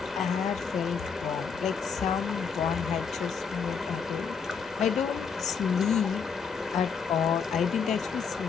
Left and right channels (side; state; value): right; quieter; 6.1 dB